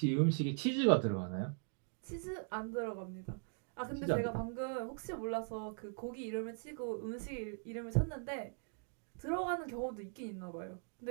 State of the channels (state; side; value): silent; left; 51 dB below the other